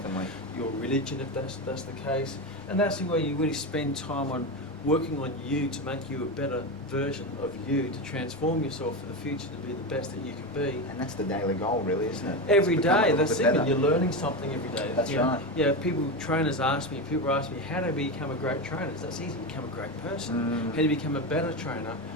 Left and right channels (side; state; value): both; normal; correlation 0.17